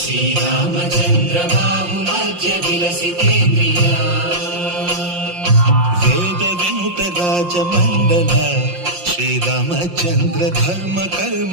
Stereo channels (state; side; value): late; left; 5.7 ms